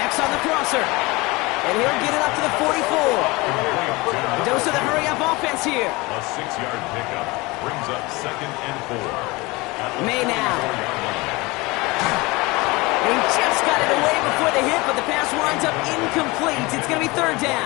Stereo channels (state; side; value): quieter; right; 23.4 dB